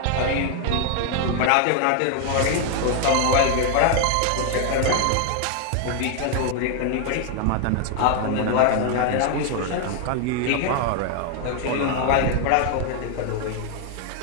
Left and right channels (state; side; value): different; both; correlation 0.00